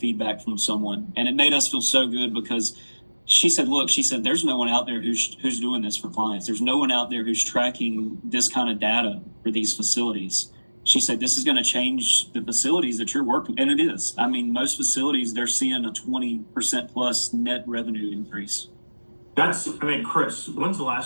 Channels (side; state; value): both; inverted; correlation -1.00